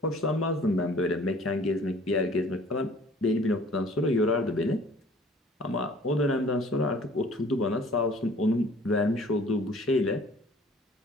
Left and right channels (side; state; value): both; normal; correlation 0.52